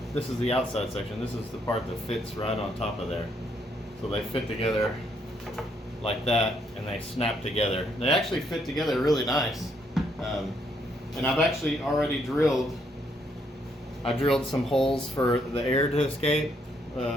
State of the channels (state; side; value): normal; both; correlation 0.72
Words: this is the outside section. This is the part that fits right on top of there. So they fit together like that, and they snap together. They actually fit together really nice. And I've actually already drilled some holes for the air to escape,